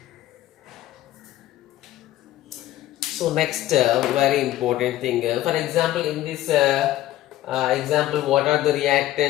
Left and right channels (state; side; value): quieter; right; 14.4 dB